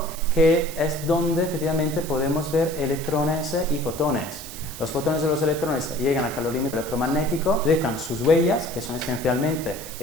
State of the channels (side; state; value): right; noise; hiss, 13 dB below the sound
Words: que es donde efectivamente podemos ver electrones y fotones. Los fotones y los electrones llegan al calorímetro electromagnético, dejan sus huellas, que son esencialmente